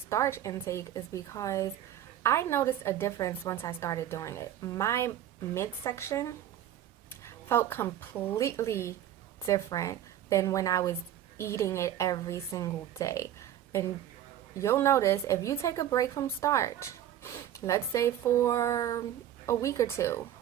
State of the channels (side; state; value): left; quieter; 11.3 dB